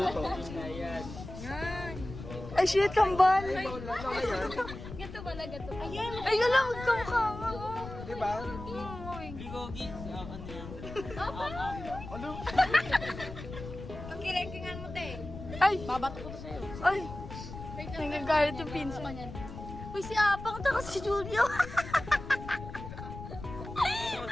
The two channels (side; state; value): left; noise; rumble, 11 dB below the sound